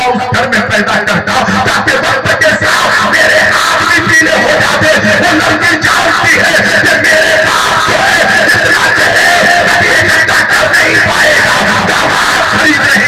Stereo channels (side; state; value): both; identical; correlation 1.00